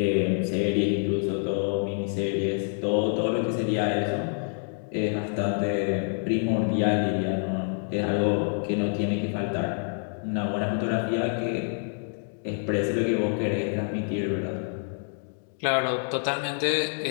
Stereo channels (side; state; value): right; silent; 60 dB below the other